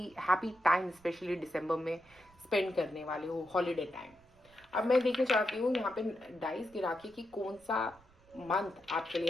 हैप्पी टाइम स्पेशली दिसंबर में स्पेंड करने वाले हो, हॉलीडे टाइम। अब मैं देखना चाहती हूँ यहाँ पे डाइस गिरा के कि कौन सा मंथ आपके लिए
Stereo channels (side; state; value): right; noise; rumble, 29 dB below the sound